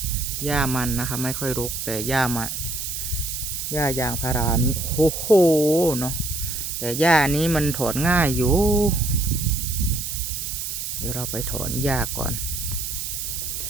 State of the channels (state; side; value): noise; right; hiss, 4 dB below the sound